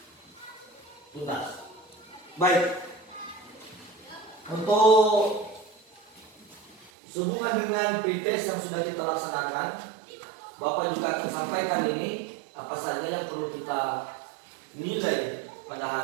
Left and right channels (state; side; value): drops out; left; at 6.9 s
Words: tuntas. Baik. Untuk sehubungan dengan pretest yang sudah kita laksanakan, Bapak juga akan sampaikan ini apa saja yang perlu kita nilai pada